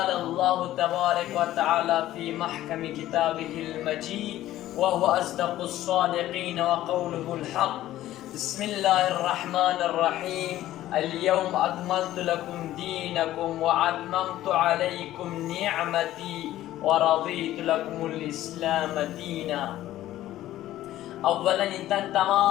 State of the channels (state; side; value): quieter; right; 14.2 dB